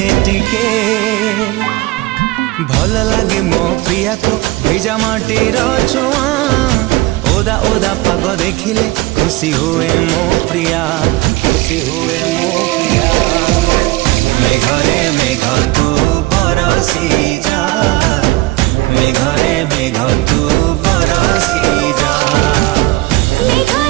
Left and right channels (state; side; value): quieter; left; 19.9 dB